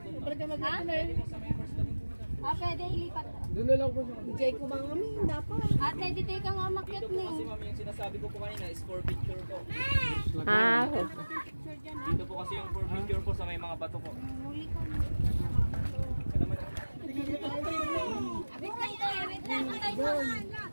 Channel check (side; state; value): both; inverted; correlation -1.00